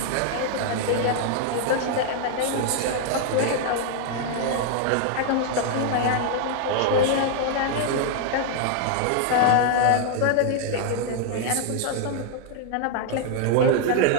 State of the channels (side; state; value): both; different; correlation 0.00